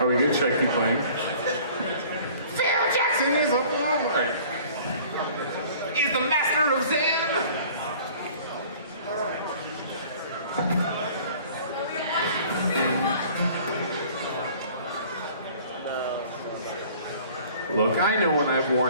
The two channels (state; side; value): inverted; both; correlation -0.50